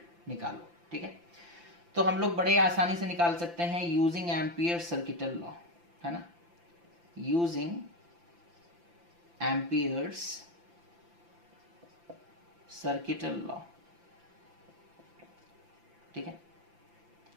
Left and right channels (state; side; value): late; left; 5.9 ms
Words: निकालो। ठीक है, तो हम लोग बड़े आसानी से निकाल सकते हैं यूजिंग एम्पियर सर्किटल लॉ, है ना, यूजिंग एम्पियर्स सर्किटल लॉ। ठीक है,